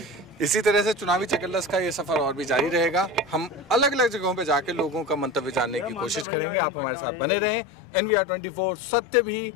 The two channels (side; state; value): right; drops out; at 6.2 s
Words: इसी तरह से चुनावी चकल्लस का ये सफर और भी जारी रहेगा। हम अलग अलग जगहों पे जाके लोगों का मंतव्य जानने की कोशिश करेंगे। आप हमारे साथ बने रहें। NVR 24, सत्य भी